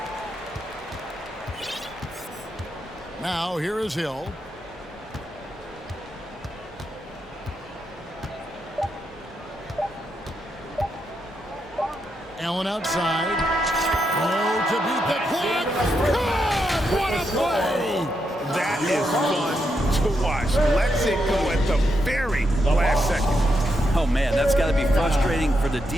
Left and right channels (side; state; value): both; normal; correlation 0.82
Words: Now here is Hill. Allen outside. Oh, to beat the clock. God, what a play! That is fun to watch. Lets it go at the very last second. Oh, man, that's got to be frustrating for the